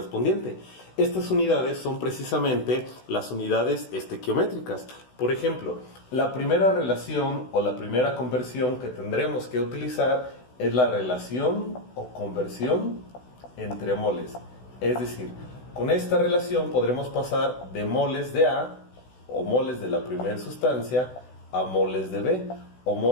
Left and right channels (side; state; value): right; late; 16 ms